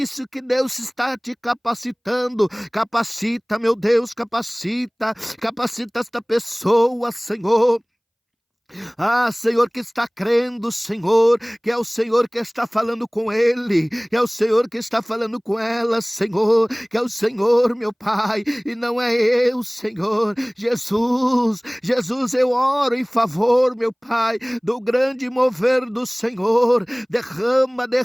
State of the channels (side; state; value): both; identical; correlation 1.00